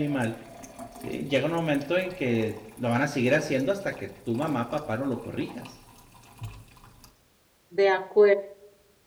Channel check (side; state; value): both; identical; correlation 1.00